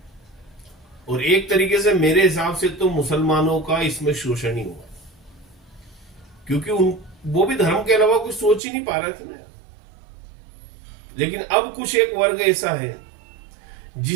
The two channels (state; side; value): drops out; left; at 8.6 s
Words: और एक तरीके से मेरे हिसाब से तो मुसलमानों का इसमें शोषण ही हुआ, क्योंकि वो भी धर्म के अलावा कुछ सोच ही नहीं पा रहे थे ना। लेकिन अब कुछ एक वर्ग ऐसा है